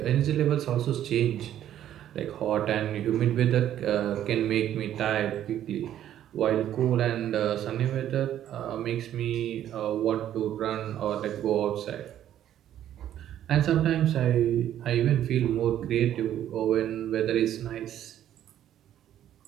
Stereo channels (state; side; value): quieter; left; 11.3 dB